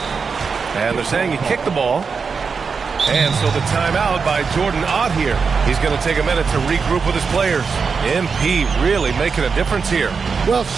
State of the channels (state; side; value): quieter; left; 5.4 dB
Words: And they're saying he kicked the ball. And so the timeout by Jordan Ott here. He's going to take a minute to regroup with his players. MP really making a difference here. Well,